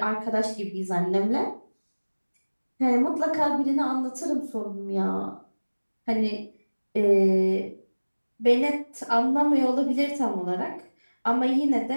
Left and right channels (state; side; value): inverted; both; correlation -1.00